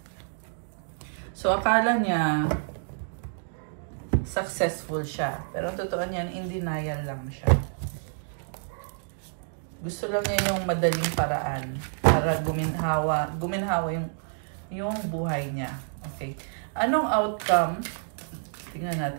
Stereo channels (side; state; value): left; silent; digital silence